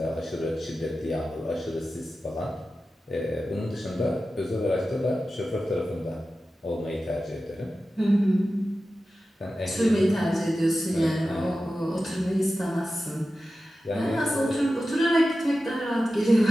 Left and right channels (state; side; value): normal; both; correlation 0.94